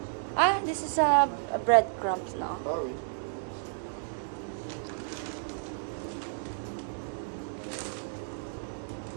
Ah, this is a breadcrumbs now. Ah oui.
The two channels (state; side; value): silent; left; 56 dB below the other